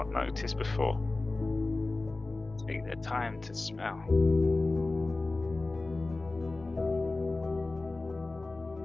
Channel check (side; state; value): right; quieter; 3.2 dB